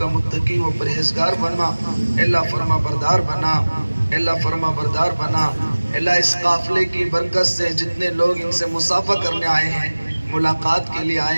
متقی و پرہیزگار بنا، اے اللہ فرما بردار بنا، اے اللہ فرما بردار بنا۔ اے اللہ اس قافلے کی برکت سے جتنے لوگ ان سے مصافحہ کرنے آئے ہیں، ملاقات کے لیے آئے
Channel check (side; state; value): both; inverted; correlation -1.00